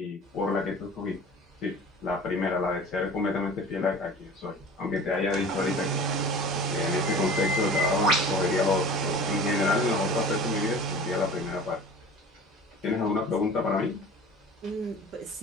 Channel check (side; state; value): both; normal; correlation 0.41